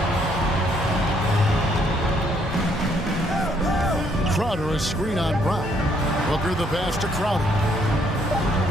Crowder a screen on Brown. Booker the pass to Crowder.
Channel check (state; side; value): normal; both; correlation 0.68